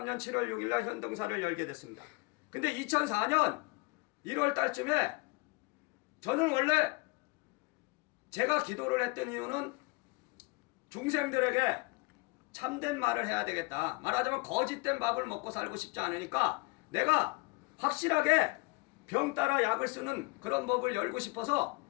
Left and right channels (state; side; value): quieter; right; 26.7 dB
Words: 7월 6일 날 현등사를 열게 됐습니다. 근데 2004년 1월 달쯤에 저는 원래 제가 기도를 했던 이유는 중생들에게 참된 말을 해야 되겠다. 말하자면 거짓된 밥을 먹고 살고 싶지 않으니까 내가 확실하게 병 따라 약을 쓰는 그런 법을 열고 싶어서